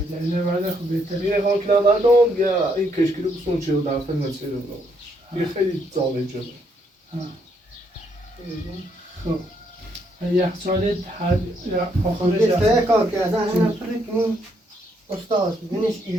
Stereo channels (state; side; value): normal; both; correlation 0.73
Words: دلیل بعد خب بهتره یه خان کلم ندارم یا این کشکی رو بسون چه رو در فیلم چه رو یه خیلی زاله جده خب یخچال هر آخرش یه سه کار که از همه پرکنیم استاد بینش